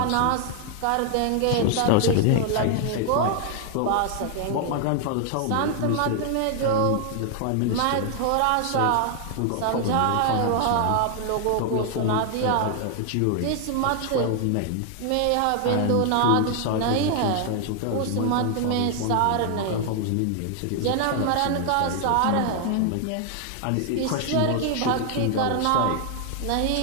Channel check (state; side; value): different; both; correlation 0.00